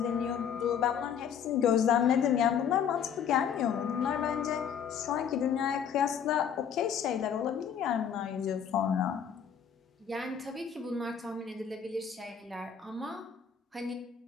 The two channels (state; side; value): quieter; right; 7.9 dB